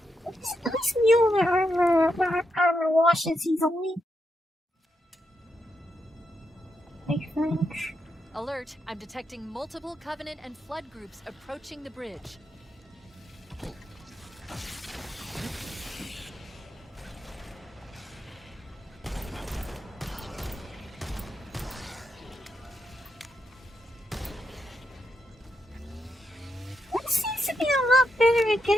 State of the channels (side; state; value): both; normal; correlation 0.83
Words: At least Mueller armor washes easily. I think. Alert! I'm detecting multiple Covenant and Flood groups approaching the bridge. One seems to be a lot better at